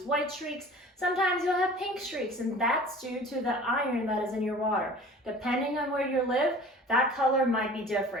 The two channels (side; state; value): both; normal; correlation 0.44